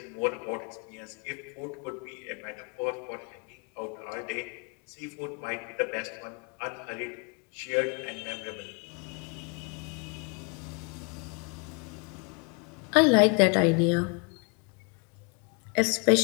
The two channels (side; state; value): right; quieter; 33.8 dB